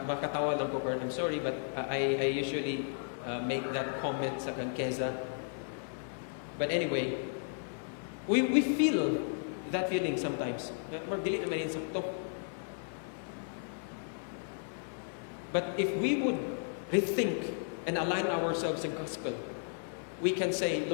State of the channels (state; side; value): silent; right; digital silence